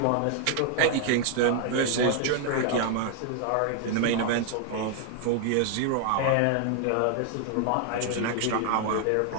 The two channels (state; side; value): different; both; correlation 0.00